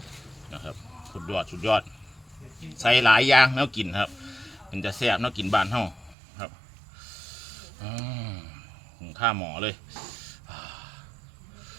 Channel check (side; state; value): left; drops out; at 6.2 s